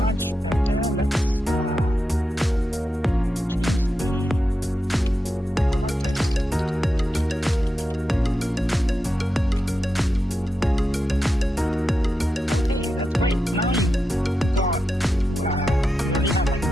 better. Let's change the product title. Okay, that's great. Now you already have like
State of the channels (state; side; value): normal; both; correlation 0.88